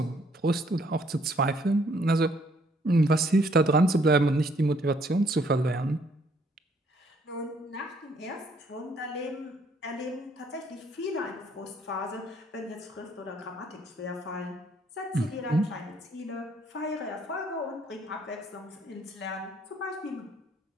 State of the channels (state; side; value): normal; both; correlation 0.66